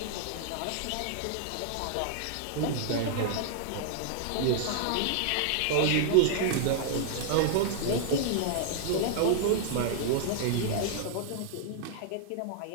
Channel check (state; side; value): different; both; correlation -0.01